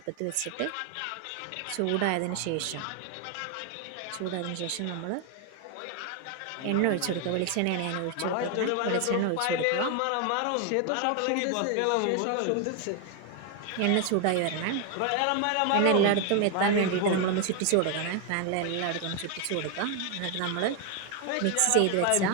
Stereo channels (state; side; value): different; both; correlation 0.01